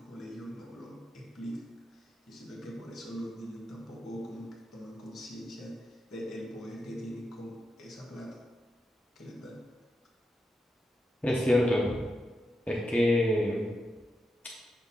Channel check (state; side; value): normal; both; correlation 0.86